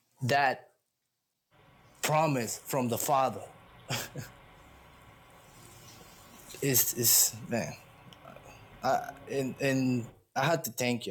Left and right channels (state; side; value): identical; both; correlation 1.00